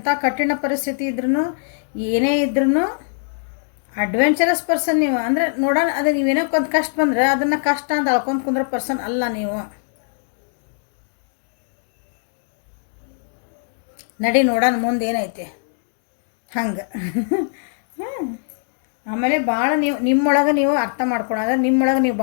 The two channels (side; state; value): right; silent; digital silence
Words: ಕಠಿಣ ಪರಿಸ್ಥಿತಿ ಇದ್ರೂ, ಏನೇ ಇದ್ರೂ ಅಡ್ವೆಂಚರಸ್ ಪರ್ಸನ್ ನೀವು. ಅಂದರೆ ನೋಡೋಣ, ಅದು ನೀವೇನೋ ಒಂದು ಕಷ್ಟ ಬಂದರೆ ಅದನ್ನು ಕಷ್ಟ ಅಂತ ಅಳ್ಕೊಂಡು ಕುಂದ್ರೋ ಪರ್ಸನ್ ಅಲ್ಲ ನೀವು. ನಡಿ ನೋಡೋಣ ಮುಂದೆ ಏನೈತೆ ಹಂಗೆ. ಆಮೇಲೆ ಭಾಳ ನಿಮ್ಮೊಳಗೆ ನೀವು ಅರ್ಥ ಮಾಡ್ಕೊಳೋದು, ನಿಮ್ಮೊಳಗೆ ನೀವು